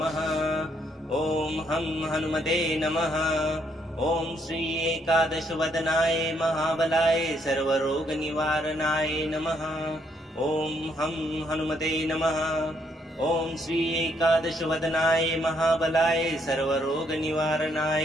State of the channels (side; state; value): both; normal; correlation 0.72